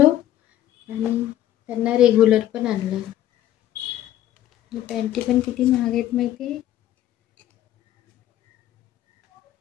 आणि त्यांना रेग्युलर पण आणलं. पॅन्टी पण किती महाग आहेत माहिती आहे.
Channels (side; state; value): right; quieter; 12.6 dB